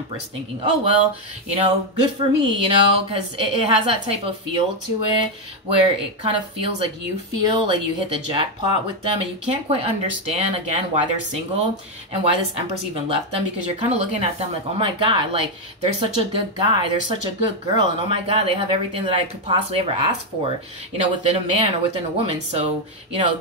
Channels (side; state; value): both; normal; correlation 0.04